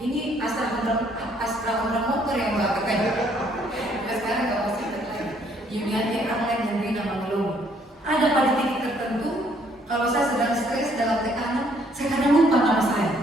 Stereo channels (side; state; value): both; normal; correlation 0.66